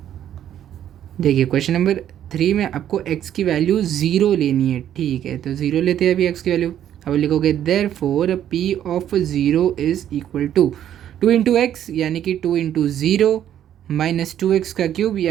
देखिए क्वेश्चन नंबर 3 में आपको x की वैल्यू 0 लेनी है, ठीक है। तो 0 लेते हैं अभी x की वैल्यू। अब लिखोगे therefore P of 0 is equal to 2 into X यानी कि 2 इंटू 0 माइनस 2x का क्यूब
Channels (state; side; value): quieter; left; 10.7 dB